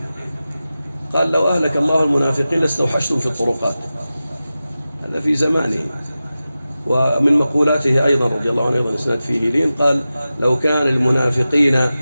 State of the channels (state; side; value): inverted; both; correlation -0.94